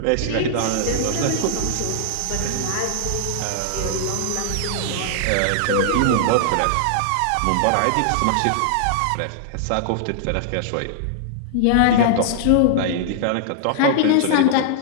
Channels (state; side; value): different; both; correlation -0.01